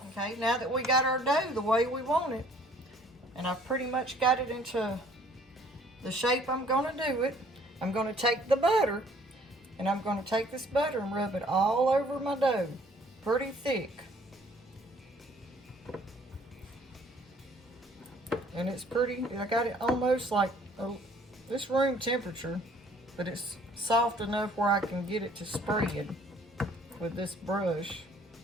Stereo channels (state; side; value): normal; both; correlation 0.58